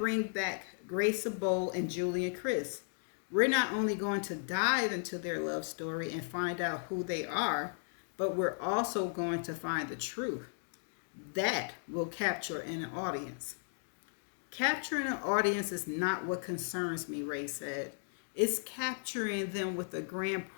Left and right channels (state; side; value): silent; right; digital silence